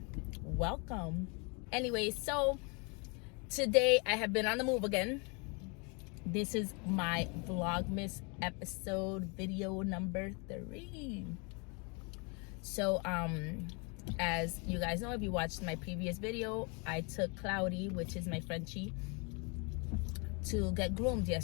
Welcome. Anyway, so today I have been on the move again. This is my VLOGMAS episode video number 3. So as you guys know, if you watched my previous video, I took Cloudy, which is my Frenchie, to get groomed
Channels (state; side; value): quieter; right; 32.5 dB